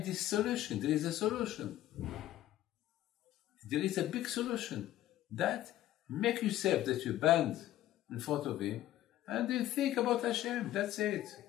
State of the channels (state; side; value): quieter; right; 13.8 dB